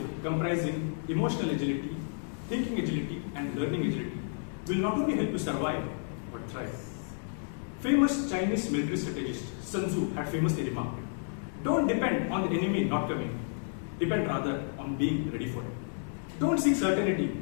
comprising emotional agility, thinking agility, and learning agility will not only help you survive, but thrive. Famous Chinese military strategist Sun Tzu had famously remarked, "Don't depend on the enemy not coming, depend rather on being ready for it." Don't seek certainty,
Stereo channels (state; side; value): silent; right; digital silence